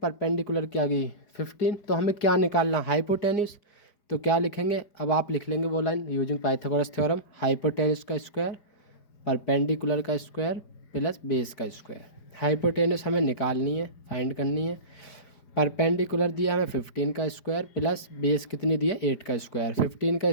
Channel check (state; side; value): late; right; 4.9 ms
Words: की आ गई 15, तो हमें क्या निकालना, हाइपोटेन्यूस। तो क्या लिखेंगे, अब आप लिख लेंगे वो line using Pythagoras theorem, hypotenuse का स्क्वायर परपेंडिकुलर का स्क्वायर प्लस बेस का स्क्वायर। हाइपोटेन्यूस हमें निकालनी है, फाइंड करनी है। परपेंडिकुलर दिया हमें 15 का स्क्वायर प्लस बेस कितनी दिया, 8 का स्क्वायर। 15 का